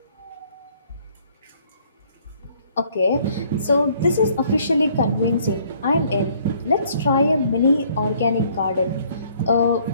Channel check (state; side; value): inverted; both; correlation -0.61